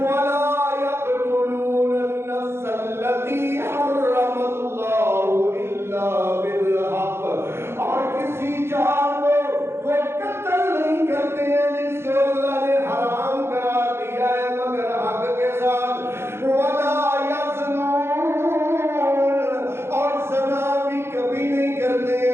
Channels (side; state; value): left; late; 0.12 ms